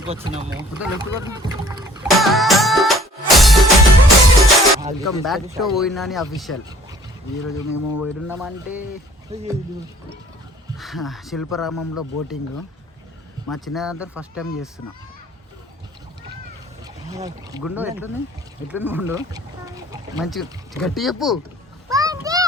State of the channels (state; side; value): normal; both; correlation 0.55